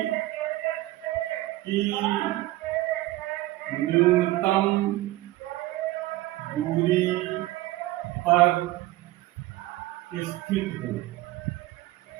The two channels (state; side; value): quieter; left; 17.5 dB